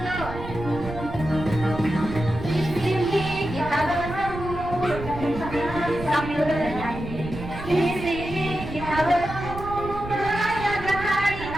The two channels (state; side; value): noise; right; rumble, 10 dB below the sound